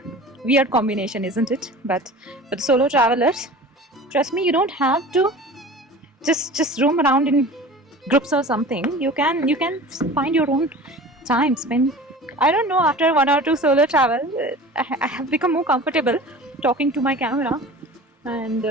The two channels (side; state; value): both; normal; correlation 0.39